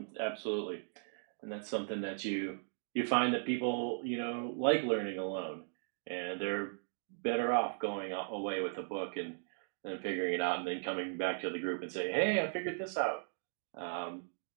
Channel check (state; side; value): silent; left; digital silence